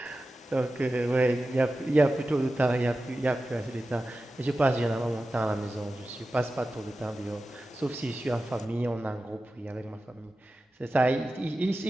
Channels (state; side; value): normal; both; correlation 0.94